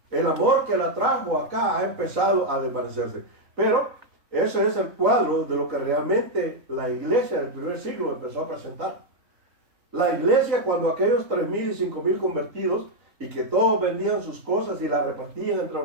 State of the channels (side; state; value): left; late; 3.9 ms